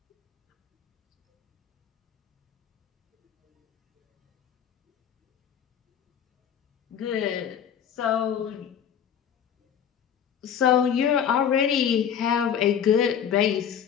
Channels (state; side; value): quieter; right; 8.6 dB